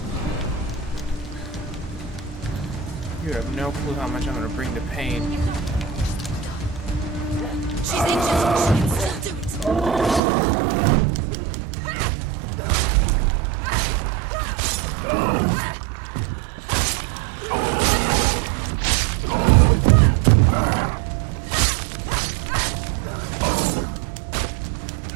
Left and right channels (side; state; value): left; drops out; at 10.2 s